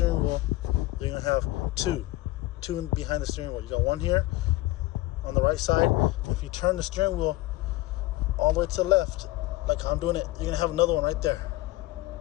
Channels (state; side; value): quieter; right; 18.0 dB